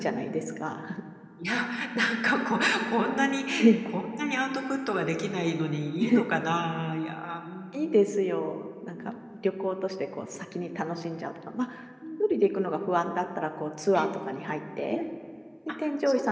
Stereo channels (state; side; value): identical; both; correlation 1.00